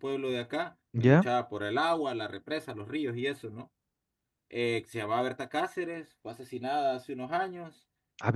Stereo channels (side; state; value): both; identical; correlation 1.00